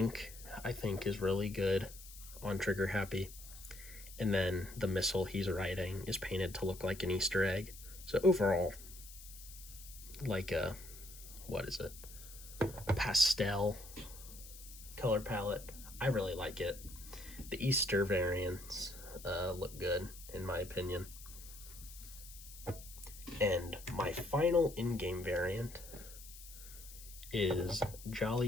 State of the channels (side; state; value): left; noise; hiss, 16 dB below the sound